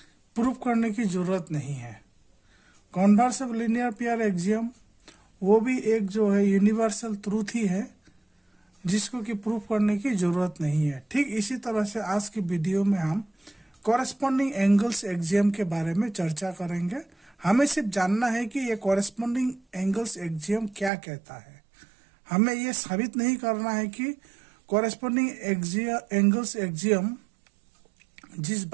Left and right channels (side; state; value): left; drops out; at 20.9 s